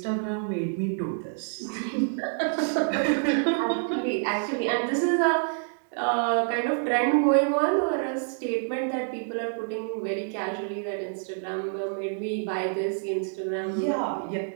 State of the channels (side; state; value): left; silent; digital silence